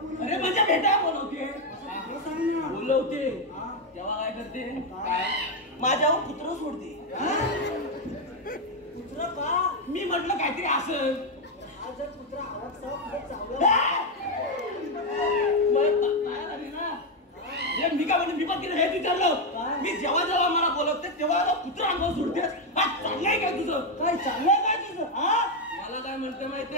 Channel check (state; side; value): normal; both; correlation 0.04